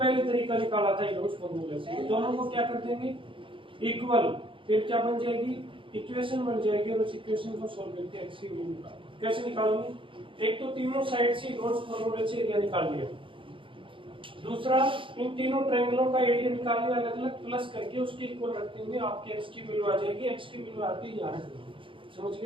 तरीका निकाला था यूज फॉर्मूले से, दोनों को क्या कर देंगे? इक्वल। फिर क्या बन जाएगी? इक्वेशन बन जाएगी। और उस इक्वेशन को सॉल्व करके x की वैल्यू निकालो। कैसे निकालोगे? एक तो तीनों साइड से यूज फॉर्मूले से एरिया निकाल लिया, दूसरा इन तीनों ट्रायंगलों का एरिया निकाल लिया, अलग अलग प्लस करके उसके इक्वल रख देंगे। आपके x की वैल्यू आ जाएगी। x की वैल्यू आती है यहाँ, समझ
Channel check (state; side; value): late; left; 0.25 ms